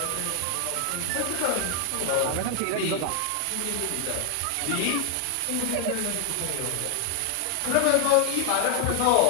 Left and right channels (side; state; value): both; different; correlation 0.00